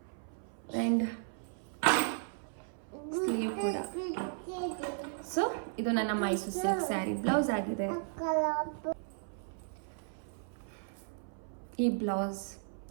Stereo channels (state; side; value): silent; left; 54 dB below the other